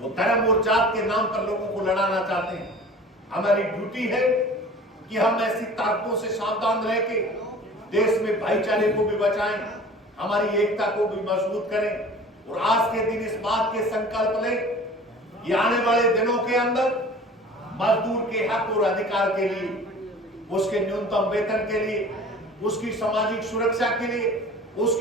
धर्म और जात के नाम पर लोगों को लड़ाना चाहते हैं। हमारी ड्यूटी है कि हम ऐसी ताकतों से सावधान रह के देश में भाईचारे को भी बचाएं, हमारी एकता को भी मजबूत करें। और आज के दिन इस बात के संकल्प लें कि आने वाले दिनों के अंदर मजदूर के हक और अधिकार के लिए, उसके न्यूनतम वेतन के लिए, उसकी सामाजिक सुरक्षा के लिए,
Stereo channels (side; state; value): both; normal; correlation 0.43